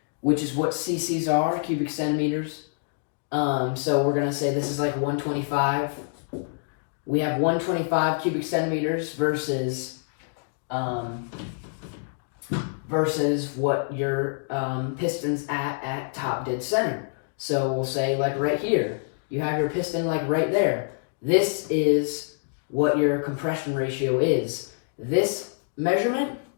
which is what cc's are, cubic centimeters. So we're gonna say this is like 125. We have 125 cubic centimeters versus what your piston's at top dead center. So we'll say like right here, you have your piston like right there. This is what your compression ratio is. This measurement,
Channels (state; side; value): silent; right; digital silence